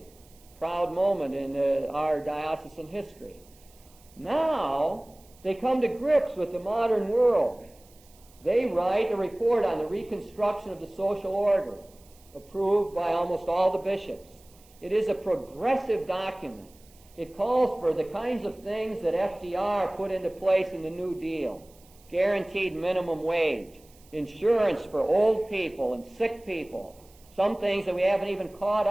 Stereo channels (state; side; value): noise; right; hiss, 28 dB below the sound